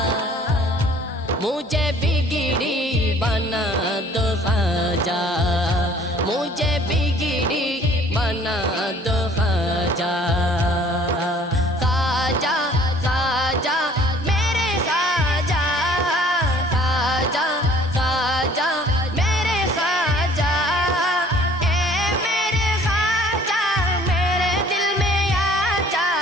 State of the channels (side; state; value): both; normal; correlation 0.55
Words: मुझे बिगड़ी बना दो ख्वाजा, मुझे बिगड़ी बना दो ख्वाजा। ख्वाजा ख्वाजा मेरे ख्वाजा, ख्वाजा ख्वाजा मेरे ख्वाजा, ए मेरे ख्वाजा मेरे दिल में आ जा,